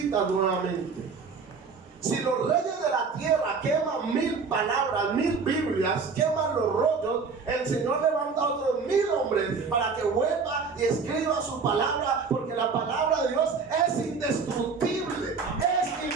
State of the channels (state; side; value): quieter; left; 5.0 dB